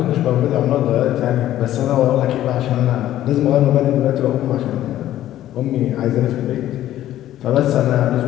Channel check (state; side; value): quieter; right; 13.1 dB